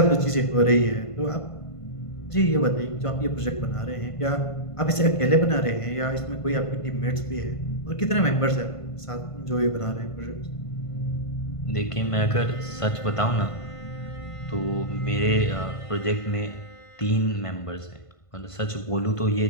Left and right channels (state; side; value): late; right; 1.5 ms